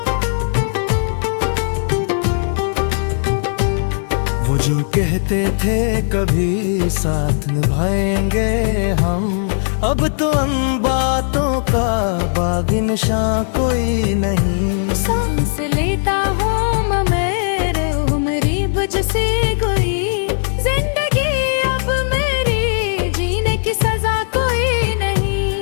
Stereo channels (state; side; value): silent; right; digital silence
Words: वो जो कहते थे कभी साथ निभाएंगे हम, अब तो उन बातों का बागी निशां कोई नहीं। सांस लेता हूँ मैं मेरे उम्री बुझ सी गई। जिंदगी अब मेरी जीने की सजा कोई